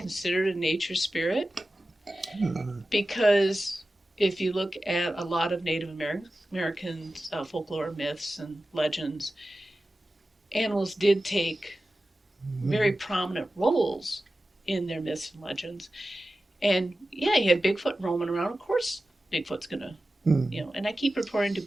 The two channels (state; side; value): normal; both; correlation 0.94